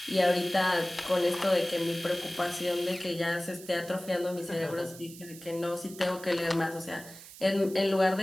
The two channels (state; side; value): noise; right; hiss, 17 dB below the sound